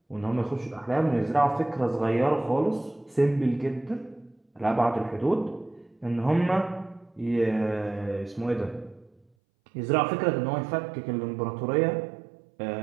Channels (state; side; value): drops out; left; at 9.2 s